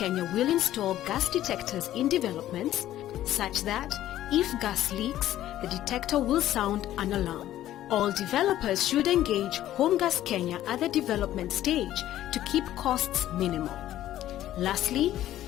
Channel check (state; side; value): quieter; right; 13.2 dB